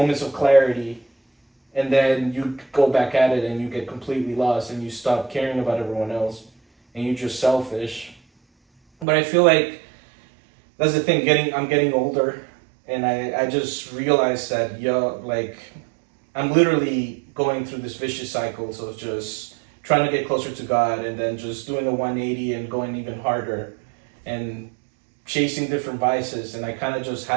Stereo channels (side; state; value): left; drops out; at 9.1 s